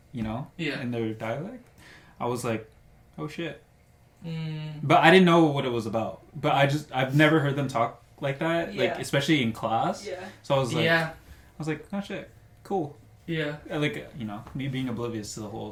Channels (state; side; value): identical; both; correlation 1.00